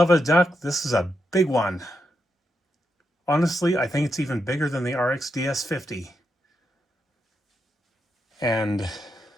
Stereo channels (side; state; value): both; normal; correlation 0.84